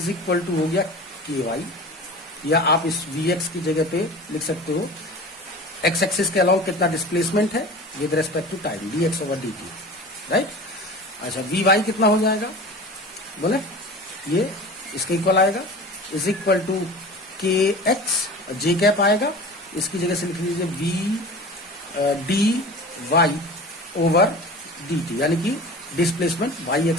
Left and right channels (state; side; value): normal; both; correlation 0.36